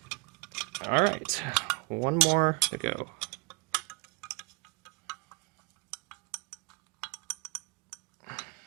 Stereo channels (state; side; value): quieter; left; 25.7 dB